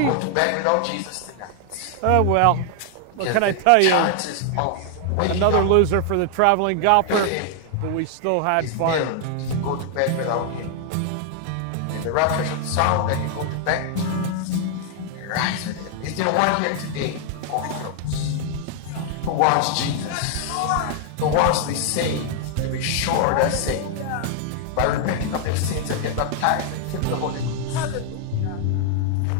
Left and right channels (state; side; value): different; both; correlation 0.00